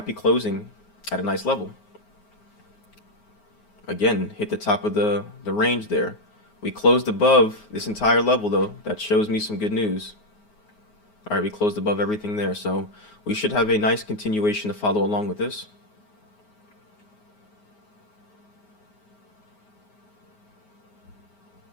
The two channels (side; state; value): right; late; 9.5 ms